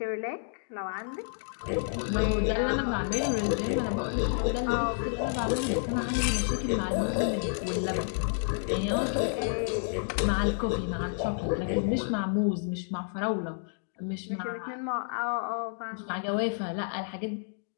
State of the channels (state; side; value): silent; right; digital silence